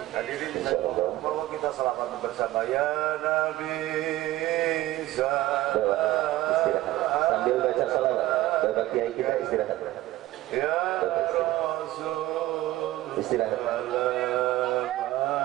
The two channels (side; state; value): left; quieter; 16.4 dB